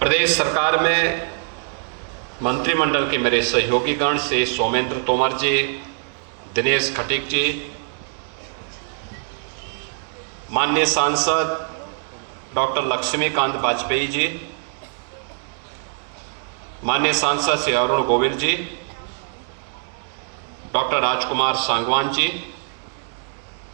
सरकार में मंत्रिमंडल के मेरे सहयोगीगण से सोमेंद्र तोमर जी, दिनेश खटीक जी, माननीय सांसद डॉक्टर लक्ष्मीकांत वाजपेयी जी, माननीय सांसद श्री अरुण गोविल जी, डॉक्टर राजकुमार सांगवान जी,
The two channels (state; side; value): silent; left; digital silence